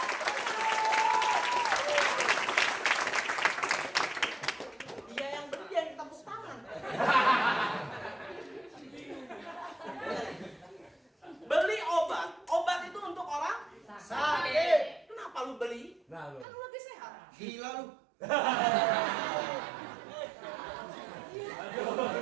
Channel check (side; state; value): left; drops out; at 16.4 s